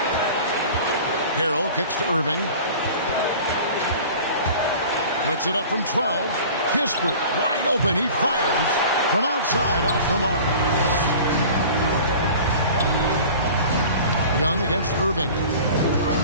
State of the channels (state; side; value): inverted; both; correlation -0.41